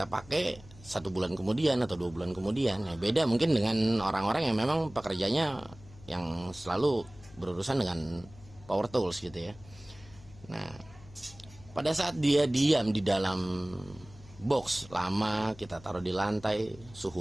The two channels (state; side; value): noise; left; hum, 21 dB below the sound